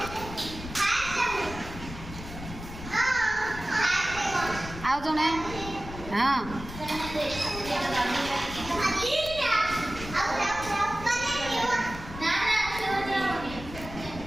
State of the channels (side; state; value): left; noise; rumble, 11 dB below the sound